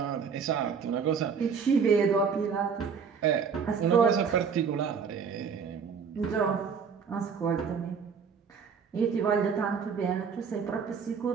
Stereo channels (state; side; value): quieter; left; 6.2 dB